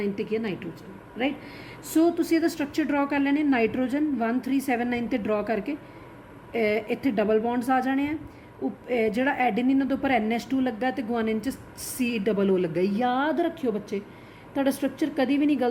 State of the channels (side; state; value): both; identical; correlation 1.00